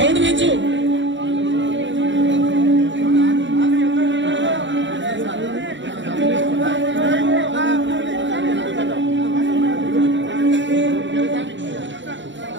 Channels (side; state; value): left; late; 0.54 ms